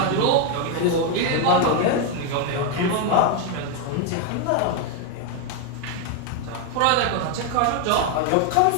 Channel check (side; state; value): both; different; correlation 0.01